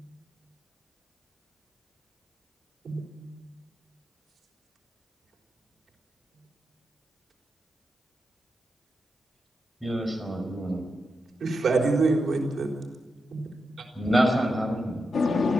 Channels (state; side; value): normal; both; correlation 0.86